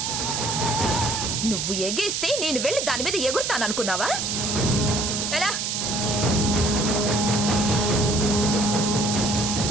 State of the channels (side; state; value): right; noise; hiss, 1 dB below the sound